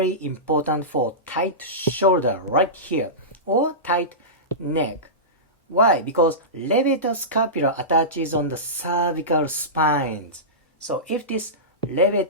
important for tight shoulder right here or tight neck. Why? Because levator scapula attaches on the cervical spines. So if this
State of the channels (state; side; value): normal; both; correlation -0.19